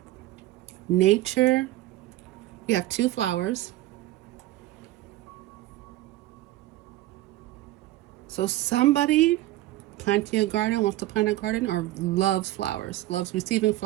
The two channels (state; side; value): quieter; left; 16.1 dB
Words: nature. We have 2 flowers. So somebody planting a garden, wants to plant a garden, or loves flowers, loves receiving